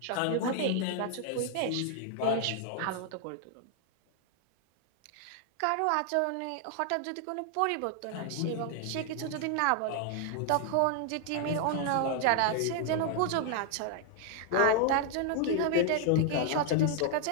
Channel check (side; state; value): both; different; correlation 0.00